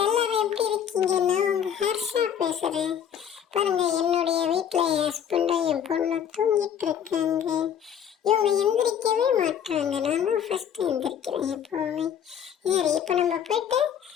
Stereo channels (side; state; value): right; quieter; 8.8 dB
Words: எல்லாரும் எப்படி இருக்கீங்க? நான் உங்க ஹர்ஷா பேசுறேன். பாருங்க, என்னுடைய வீட்டில் என் ஹஸ்பண்டும் என் பொண்ணும் தூங்கிட்டு இருக்காங்க. இவங்க எந்திரிக்கவே மாட்டாங்க. நான் தான் ஃபர்ஸ்ட் எந்திரிக்கிறேன் எப்பவுமே. சரி, இப்போ நம்ம போயிட்டு